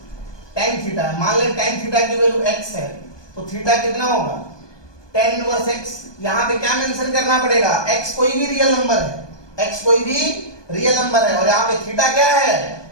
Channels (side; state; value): right; late; 1.2 ms